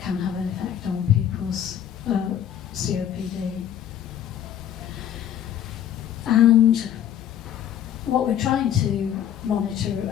have an effect on people's COPD. And what we're trying to monitor,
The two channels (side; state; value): right; quieter; 10.0 dB